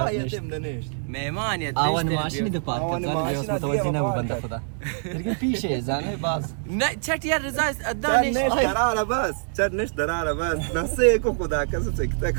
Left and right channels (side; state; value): left; silent; digital silence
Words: نشت مهمانیت آوان ماشینی ده پارک کرد زن بیوس متوجه نبود بنده خدا لیکن پیشه زنه باز نه چت یار رضا ادانش دراره بس چت نش دراره بس نسه کو خدا کس